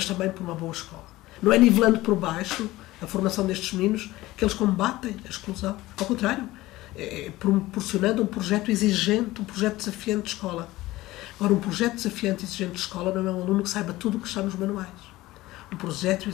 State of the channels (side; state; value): right; quieter; 17.8 dB